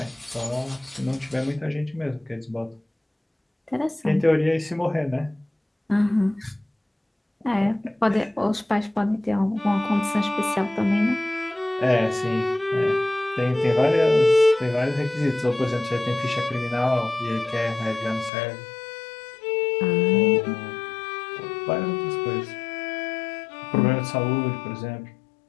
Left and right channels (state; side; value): drops out; right; at 18.3 s